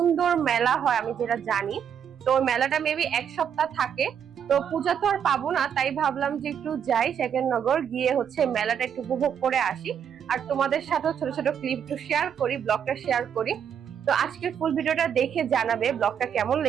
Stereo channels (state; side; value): quieter; left; 8.3 dB